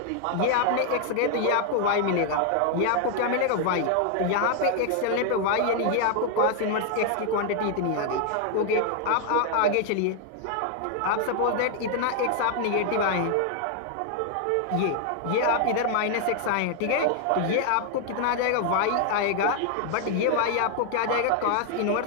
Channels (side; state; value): both; different; correlation 0.00